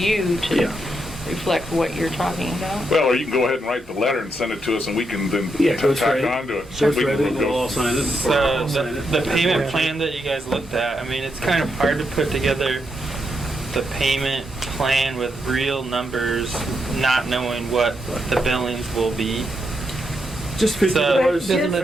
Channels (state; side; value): normal; both; correlation 0.82